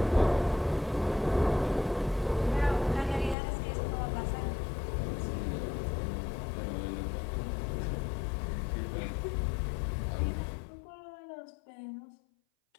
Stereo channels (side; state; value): right; drops out; at 3.4 s